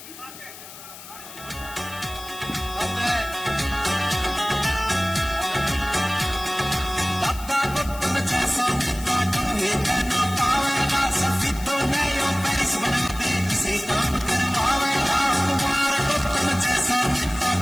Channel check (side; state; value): left; noise; hiss, 15 dB below the sound